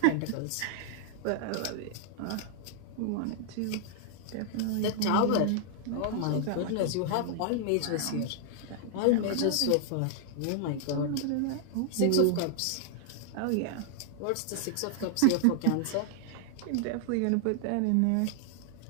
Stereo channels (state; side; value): different; both; correlation 0.00